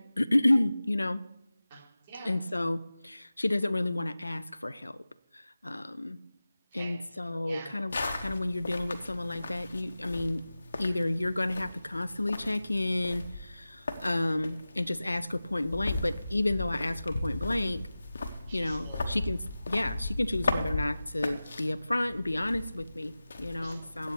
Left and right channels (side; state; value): both; inverted; correlation -0.96